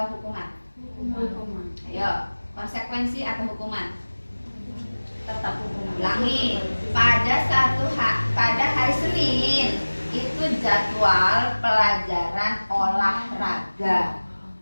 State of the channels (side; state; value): both; inverted; correlation -1.00